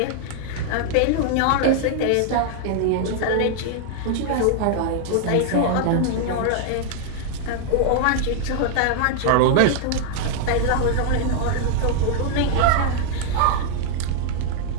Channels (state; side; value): different; both; correlation 0.00